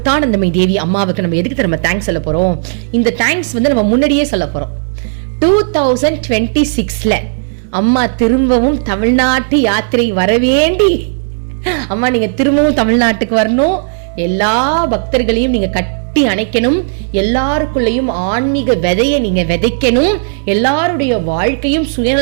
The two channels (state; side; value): silent; left; digital silence